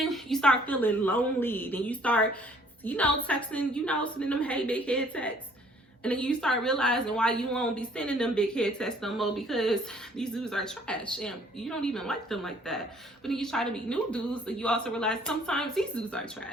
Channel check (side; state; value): both; normal; correlation 0.59